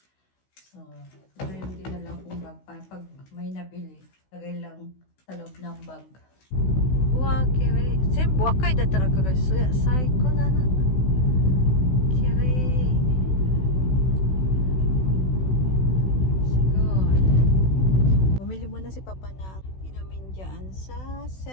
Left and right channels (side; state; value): right; late; 16 ms